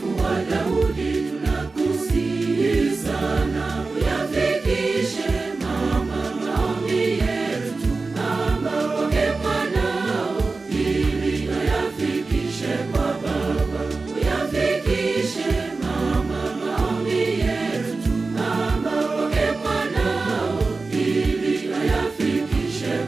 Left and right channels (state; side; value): quieter; left; 3.9 dB